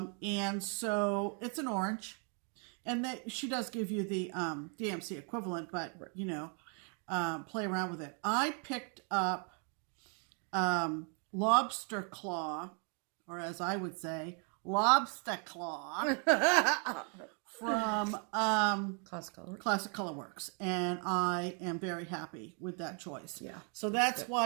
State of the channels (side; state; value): left; quieter; 39.5 dB